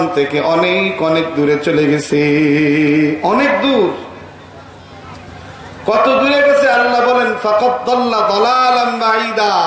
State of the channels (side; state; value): both; identical; correlation 1.00